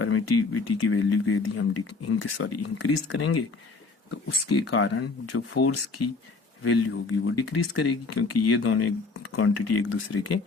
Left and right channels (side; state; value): right; quieter; 4.0 dB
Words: की वैल्यू को यदि हम इंक्रीज करेंगे तो उसके कारण जो फोर्स की वैल्यू होगी वो डिक्रीज करेगी, क्योंकि ये दोनों क्वांटिटी एक दूसरे के